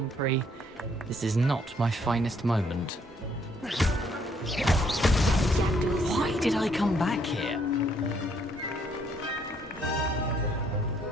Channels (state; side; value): normal; both; correlation 0.68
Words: This is not my finest moment. Why did I come back here?